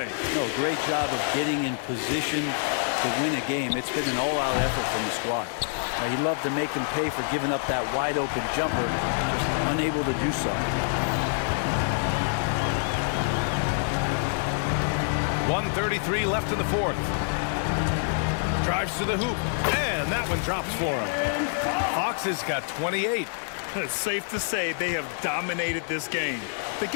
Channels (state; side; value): silent; right; digital silence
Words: No, great job of getting in position to win a game. It's been an all-out effort from the squad. He'd love to make them pay for giving up that wide-open jumper, just unable to do so. 1:33 left in the fourth. Drives to the hoop, and that one drops for him. Fox has got 28. It's safe to say they have dominated this game. The